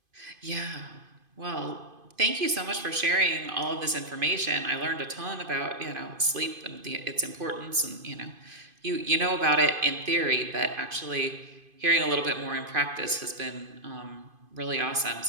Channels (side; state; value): left; late; 2.5 ms